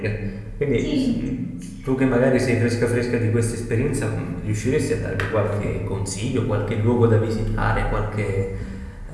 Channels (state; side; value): identical; both; correlation 1.00